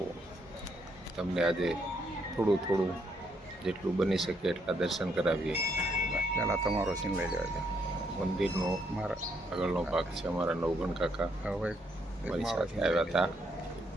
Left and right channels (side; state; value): both; normal; correlation 0.74